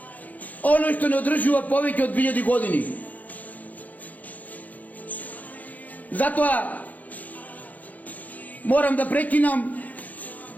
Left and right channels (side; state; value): right; late; 0.079 ms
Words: оно што не одржува повеќе од 2000 години. Затоа морам да прекинам